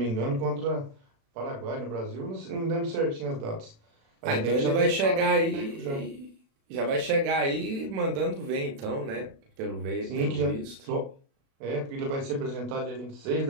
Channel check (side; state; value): left; late; 36 ms